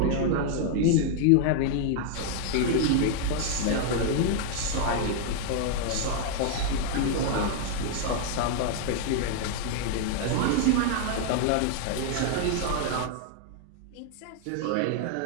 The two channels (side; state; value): both; different; correlation 0.00